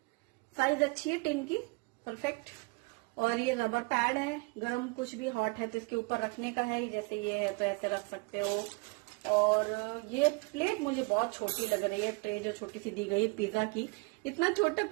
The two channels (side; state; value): left; quieter; 29.4 dB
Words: साइज अच्छी है टिन की, परफेक्ट। और ये रबर पैड है, गरम कुछ भी हॉट है तो इसके ऊपर रखने का है। जैसे ये है तो ऐसे रख सकते हो। और ये प्लेट मुझे बहुत छोटी लग रही है, ट्रे जो छोटी सी दी गई है पिज्जा की। इतना छोटा